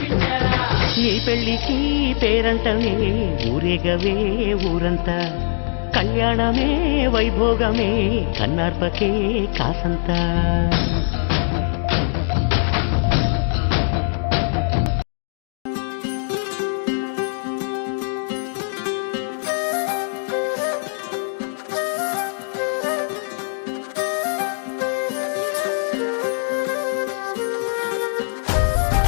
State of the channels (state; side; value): silent; right; digital silence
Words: నీ పెళ్లికి పేరంటమే ఊరేగవే ఊరంతా కళ్యాణమే వైభోగమే కన్నార్పకే కాసంతా